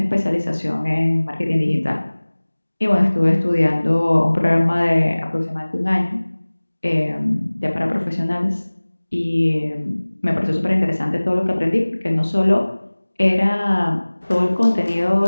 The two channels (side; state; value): both; inverted; correlation -1.00